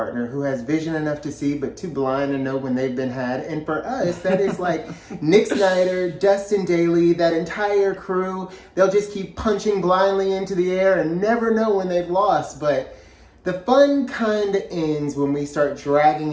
who has vision enough to see but too blind to know when they've been had. And for us, that is like Nick Snider, Dustin Daly, that entire crew. They'll just keep punching blindly into the air and never know when they've lost. But the fun kind of ends when we start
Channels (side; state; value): both; identical; correlation 1.00